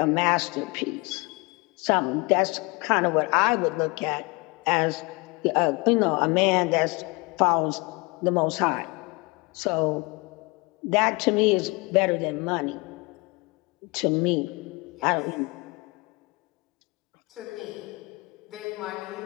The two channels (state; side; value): quieter; right; 27.0 dB